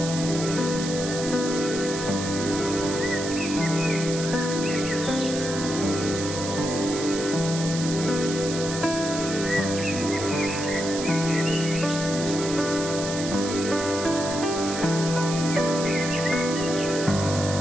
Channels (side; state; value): right; noise; hiss, 7 dB below the sound